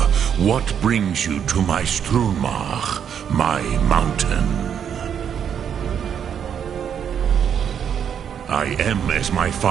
What brings you to my Strunmach, my mountain? I am as my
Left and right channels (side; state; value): left; quieter; 8.3 dB